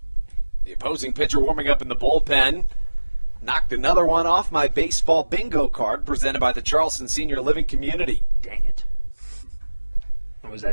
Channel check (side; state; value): both; inverted; correlation -1.00